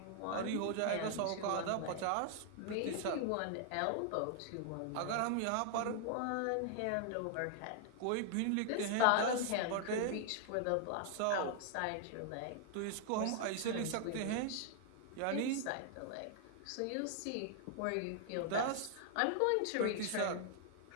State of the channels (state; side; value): different; both; correlation 0.00